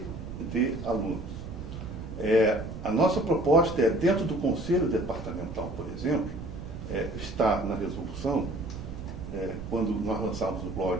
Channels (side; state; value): right; noise; rumble, 10 dB below the sound